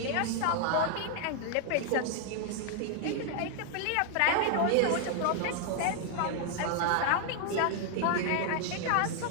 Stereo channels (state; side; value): different; both; correlation 0.00